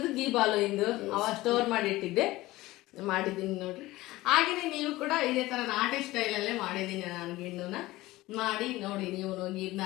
ಗೀ ಬಾಲು ಇಂದು ಅವ ಸ್ಟೋರ್ ಮಾಡಿ ಇಟ್ಟಿದ್ದೆ, ಮಾಡಿದ್ದೀನಿ ನೋಡ್ರಿ. ಹಾಗೇನೆ ನೀವು ಕೂಡ ಇದೇ ತರ ನಾಟಿ ಸ್ಟೈಲಲ್ಲೇ ಮಾಡಿದ್ದೀನಿ ನಾನು ಗಿಣ್ಣುನ. ಮಾಡಿ ನೋಡಿ ನೀವು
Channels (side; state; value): right; quieter; 18.3 dB